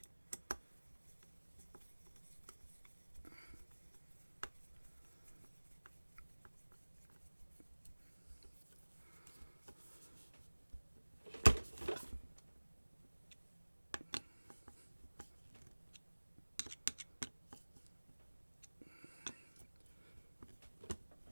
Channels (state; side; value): inverted; both; correlation -1.00